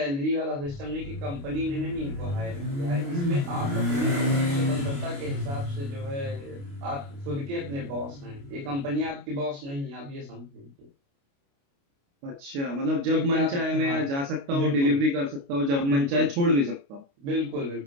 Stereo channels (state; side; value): late; left; 29 ms